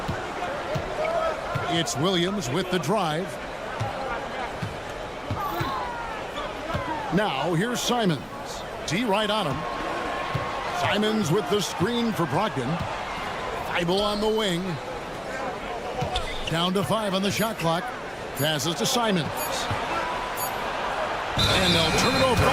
It's Williams with the drive. Now here's Simons. D right on him. Simons with the screen for Brogdon. Thibault on the wing. Down to 5 on the shot clock. Passes to Simons. And they'll turn it over.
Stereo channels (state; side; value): identical; both; correlation 1.00